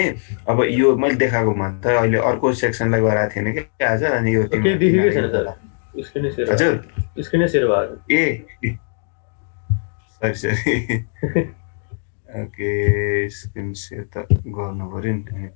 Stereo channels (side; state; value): right; silent; 65 dB below the other